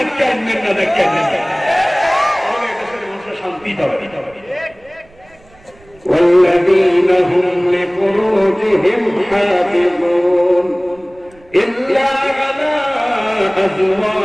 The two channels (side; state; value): right; noise; rumble, 28 dB below the sound